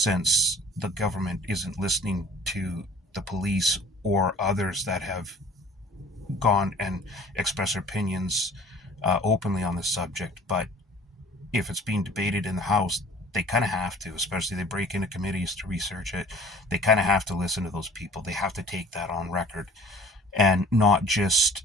the government isn't listening to the police or others that have gone and expressed their opinions openly on this subject. But if it's being debated in the House, they kind of have to, especially they break into committees to research it. They kind of have to listen to those people. They have to take that on record, and not just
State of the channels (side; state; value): both; normal; correlation 0.48